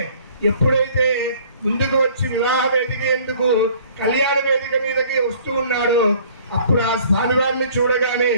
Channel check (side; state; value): both; inverted; correlation -0.54